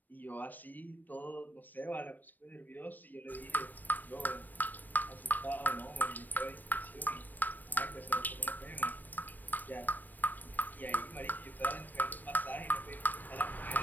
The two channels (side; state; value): right; late; 0.088 ms